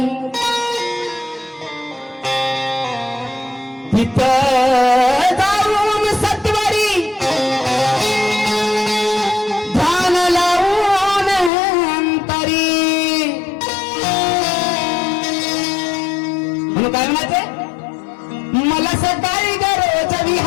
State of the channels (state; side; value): drops out; right; at 11.5 s